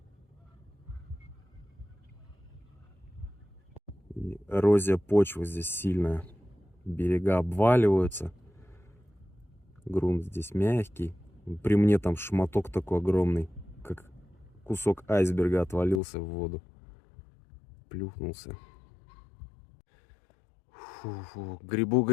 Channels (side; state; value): right; drops out; at 16.0 s